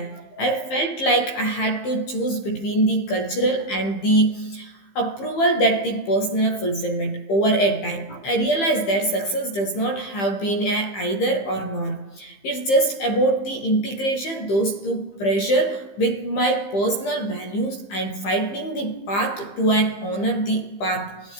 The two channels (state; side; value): late; right; 15 ms